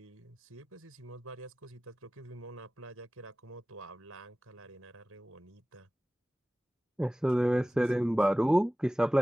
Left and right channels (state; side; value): normal; both; correlation 0.97